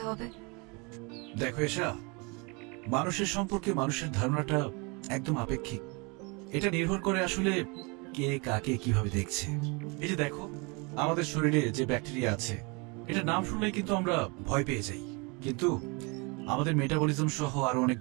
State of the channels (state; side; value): quieter; left; 29.9 dB